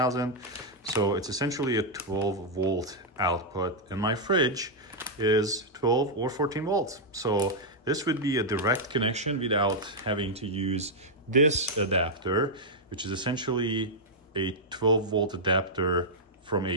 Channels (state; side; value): normal; both; correlation -0.05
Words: So it's essentially a 12 volt output, and my fridge is 12 or 14 volts. So this would be a direct connection without having to use this adapter, which is essentially a 12 volt adapter from